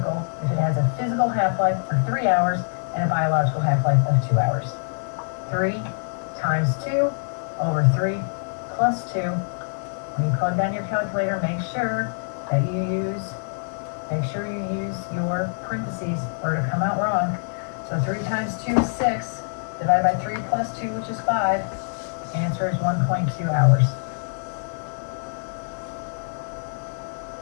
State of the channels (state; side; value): silent; right; 62 dB below the other